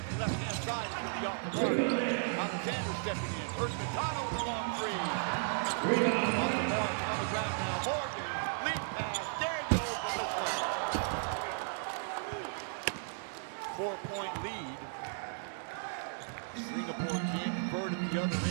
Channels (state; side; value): silent; left; digital silence